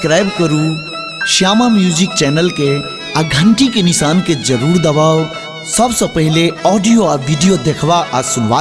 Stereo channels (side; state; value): both; identical; correlation 1.00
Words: करू Shyama music channel के आ घंटी के निशान के जरूर दबाओ सबसे पहले ऑडियो आ वीडियो देखवा आ